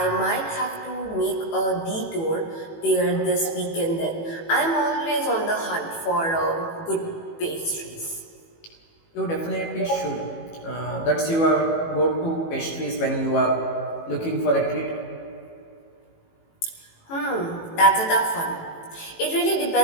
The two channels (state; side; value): late; right; 18 ms